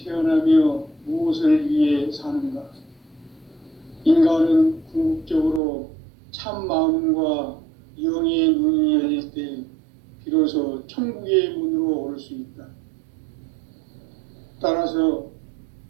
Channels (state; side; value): drops out; left; at 5.6 s